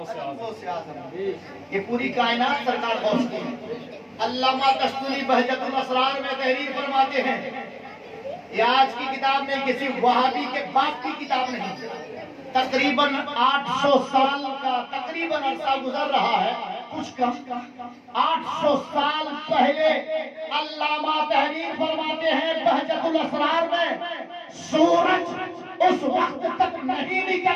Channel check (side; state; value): both; identical; correlation 1.00